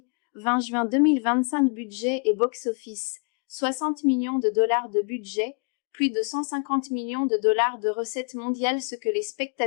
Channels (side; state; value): right; quieter; 36.2 dB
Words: 20 juin 2025 budget et box-office: 60 millions de dollars de budget, plus de 150 millions de dollars de recettes mondiales. Ce que les